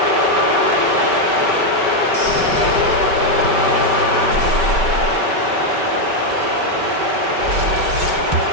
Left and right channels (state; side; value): late; left; 5.2 ms